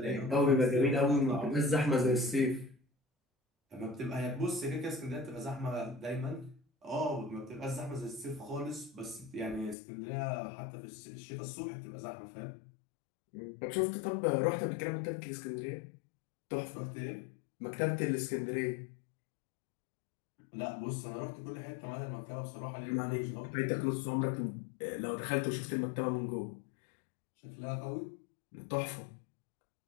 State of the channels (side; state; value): right; drops out; at 9.8 s